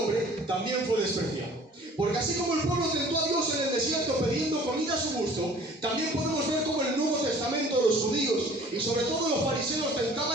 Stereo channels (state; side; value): normal; both; correlation 0.50